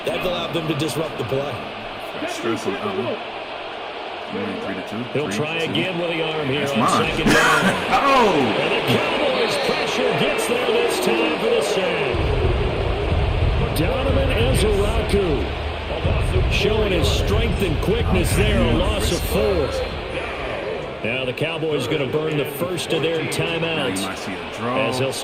That allowed them to disrupt the play. He'll try again with the arm here on 2nd down. And the Cowboys pressure gets there this time for the sack. Donovan Ezeraku showing his strength and quickness there, a loss of 4. Now the Cowboys going to burn the first of their timeouts as they'll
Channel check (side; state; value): both; identical; correlation 1.00